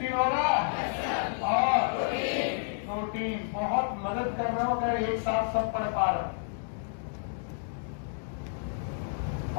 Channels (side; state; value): right; silent; digital silence